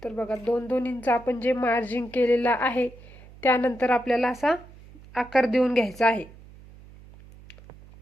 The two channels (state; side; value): noise; right; hum, 21 dB below the sound